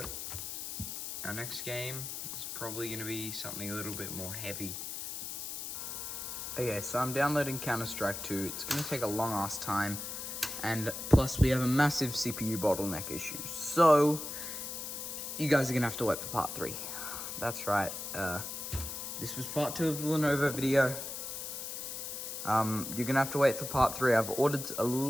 our next game is probably going to be something a little bit more heavy. Okay, so I'm downloading Counter-Strike 2. It's going to take a long ass time, and plus we have a massive CPU bottleneck issue. So you guys are going to have to wait for part 3. That's right. This was part 2 of the Lenovo video. You're gonna have to wait for part 3. I've ordered a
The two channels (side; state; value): left; noise; hiss, 6 dB below the sound